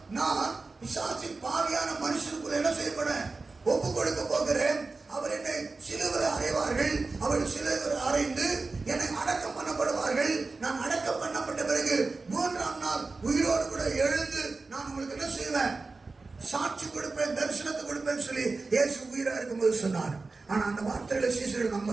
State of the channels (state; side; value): quieter; left; 3.8 dB